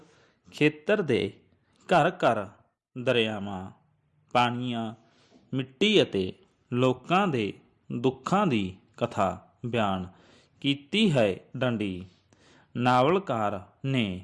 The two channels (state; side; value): identical; both; correlation 1.00